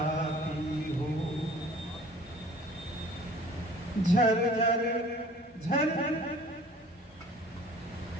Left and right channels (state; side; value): normal; both; correlation 0.49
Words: हो, झरझर झरझर